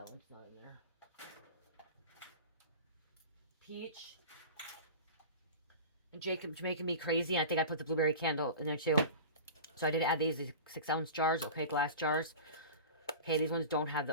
one's not in there. Peach. And Jacob's making me crazy. I think I put the blueberry candle in there too. So I did add these 6 ounce jars, okay, glass jars. Okay, these ones don't have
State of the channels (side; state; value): both; inverted; correlation -0.33